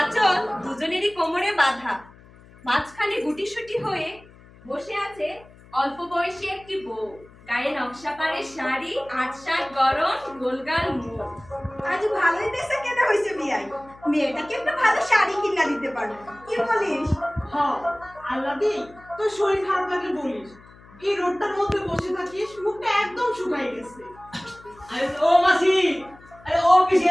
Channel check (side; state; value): left; noise; hum, 24 dB below the sound